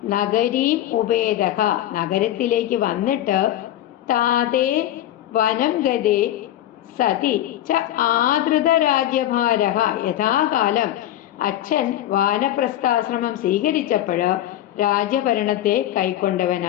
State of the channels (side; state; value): right; quieter; 12.9 dB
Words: നഗരീം ഉപേദഃ, നഗരത്തിലേക്ക് വന്നിട്ട്, താതേ വനം ഗതേ സതി ച ആദൃത രാജ്യഭാരഃ, യഥാകാലം അച്ഛൻ വാനപ്രസ്ഥാശ്രമം സ്വീകരിച്ചപ്പോൾ രാജ്യഭരണത്തെ